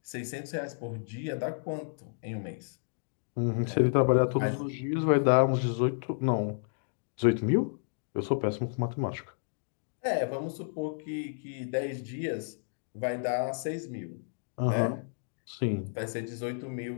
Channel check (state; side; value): silent; right; digital silence